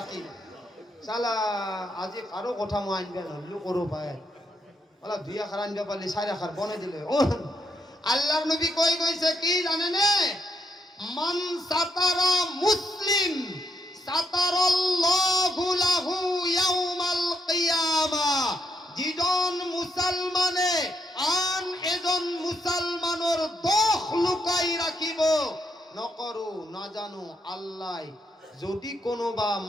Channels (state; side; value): normal; both; correlation 0.78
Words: চালা আজি কাৰো কথা মই আনবা নহলো কৰো পায়, অলপ ২ আখাৰ আনবা পালি ৪ আখাৰ বনাই দিলে। আল্লাহর নবী কই কইছে কি জানেনে? মান সাতারা মুসলিম সাতারাল্লাহু লাহু ইয়াউমাল কিয়ামা। যিজন মুসলমানে আন এজন মুসলমানৰ দোষ লুকাই রাখিব নকৰো নাজানো আল্লাহ, যদি কোনোবা